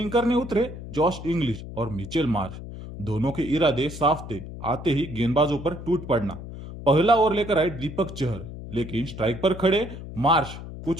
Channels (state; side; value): noise; left; hum, 11 dB below the sound